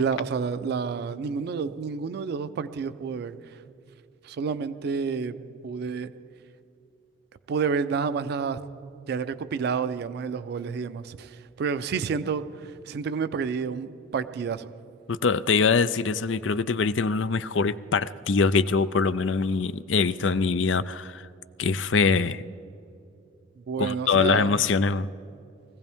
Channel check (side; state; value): both; normal; correlation 0.25